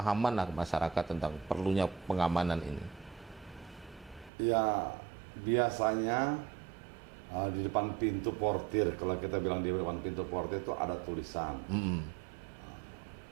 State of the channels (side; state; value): left; drops out; at 4.3 s